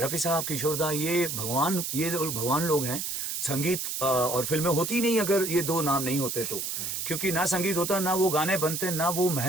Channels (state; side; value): noise; right; hiss, 3 dB below the sound